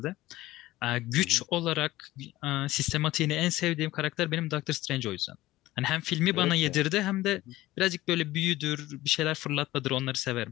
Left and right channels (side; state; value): right; quieter; 17.0 dB